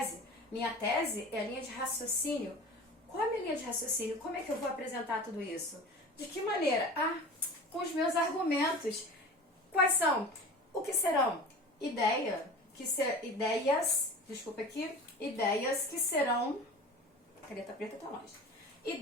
Minha tese é a linha de raciocínio. Qual é a minha linha de raciocínio? Como é que eu vou apresentar tudo isso? De que maneira? Com os meus argumentos. Quais são? O que serão? Ideias que serão... Caneta preta tá longe.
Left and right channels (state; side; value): normal; both; correlation 0.36